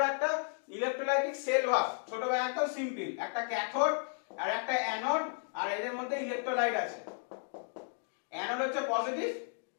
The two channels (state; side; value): silent; right; 55 dB below the other